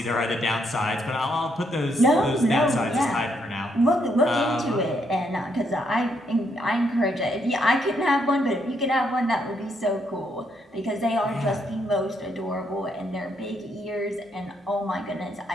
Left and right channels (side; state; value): both; normal; correlation 0.75